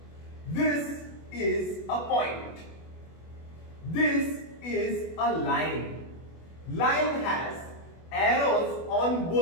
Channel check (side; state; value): right; late; 24 ms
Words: This is a point. This is a line. Line has arrows on